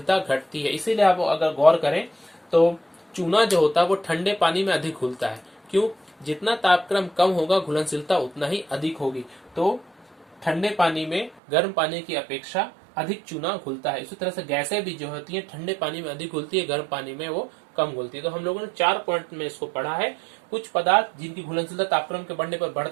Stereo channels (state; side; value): drops out; left; at 11.4 s